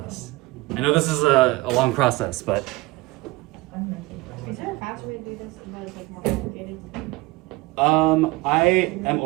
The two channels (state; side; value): quieter; left; 21.4 dB